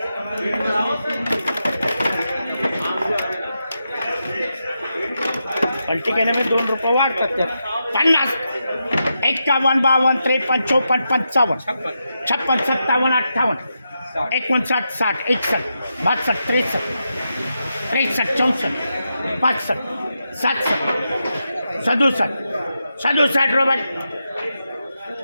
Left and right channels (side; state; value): both; inverted; correlation -0.86